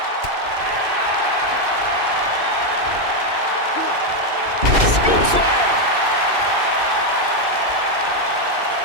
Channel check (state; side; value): late; left; 2.6 ms